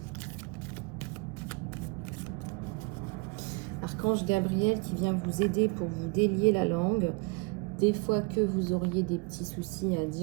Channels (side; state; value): left; quieter; 30.3 dB